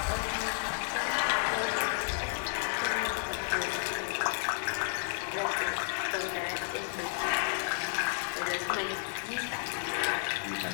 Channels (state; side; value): silent; right; digital silence